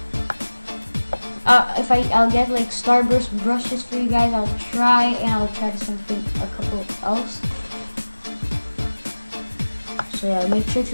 I'll get like Starburst brushes for you guys. I'll try, and I'll try a couple else. So yeah, make sure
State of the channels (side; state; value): both; inverted; correlation -1.00